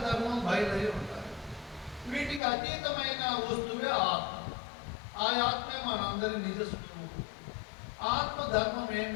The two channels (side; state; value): right; drops out; at 2.4 s